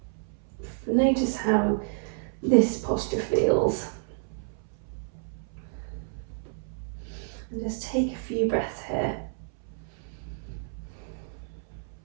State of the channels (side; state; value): left; silent; 58 dB below the other